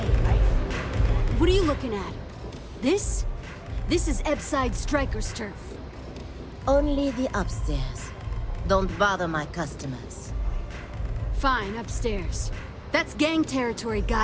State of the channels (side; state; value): both; identical; correlation 1.00